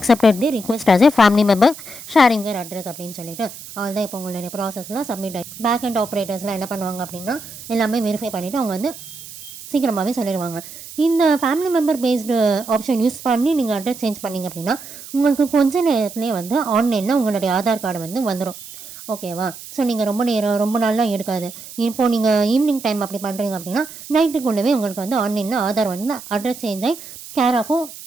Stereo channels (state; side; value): noise; right; hiss, 15 dB below the sound